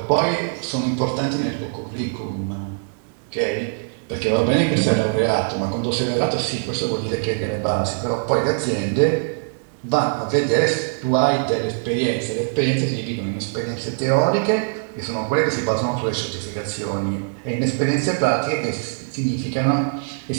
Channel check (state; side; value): silent; left; digital silence